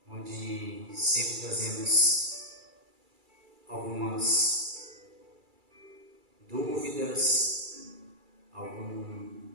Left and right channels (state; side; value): late; left; 2.3 ms